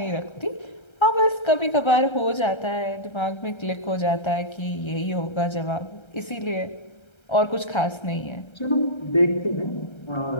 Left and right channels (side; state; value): right; late; 1.3 ms